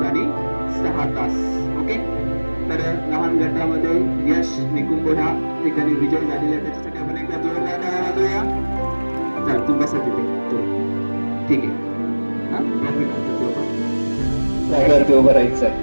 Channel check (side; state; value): both; inverted; correlation -1.00